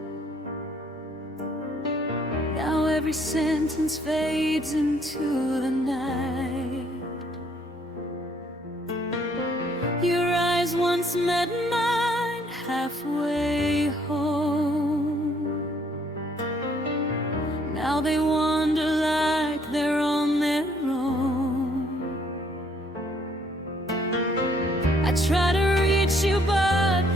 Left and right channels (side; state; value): both; normal; correlation 0.65